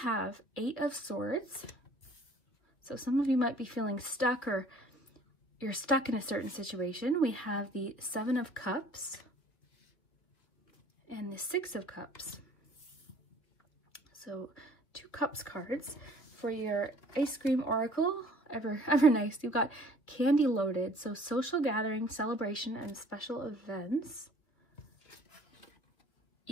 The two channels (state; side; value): late; right; 2.9 ms